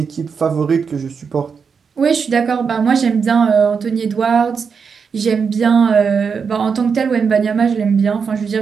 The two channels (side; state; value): left; quieter; 5.9 dB